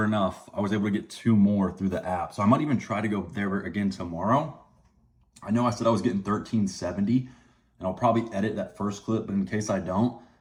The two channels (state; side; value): identical; both; correlation 1.00